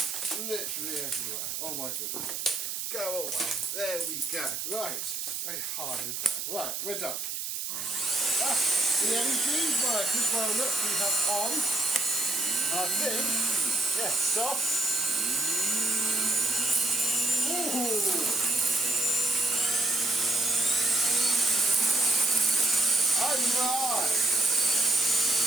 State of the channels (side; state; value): right; noise; hiss, 4 dB below the sound